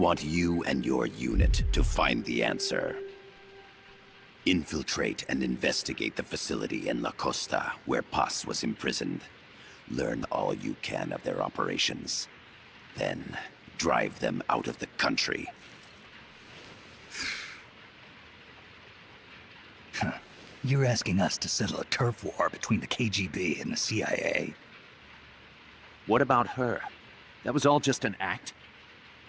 you and your unit to find the answer. Infiltrate and investigate the facility in La Costa where Paz was imprisoned. Learn all you can of their operations. Then, drive them out of the country. You're asking us to settle a turf war between the KGB and the CIA? What about her? That was all just an act?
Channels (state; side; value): identical; both; correlation 1.00